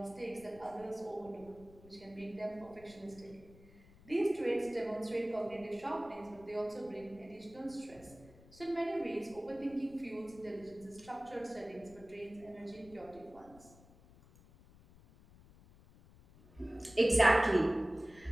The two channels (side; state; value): left; noise; rumble, 23 dB below the sound